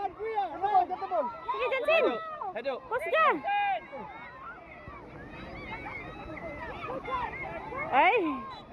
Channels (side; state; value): both; identical; correlation 1.00